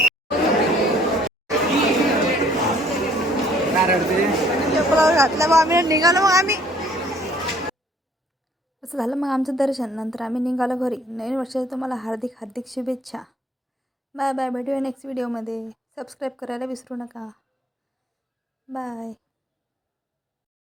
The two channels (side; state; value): both; normal; correlation 0.60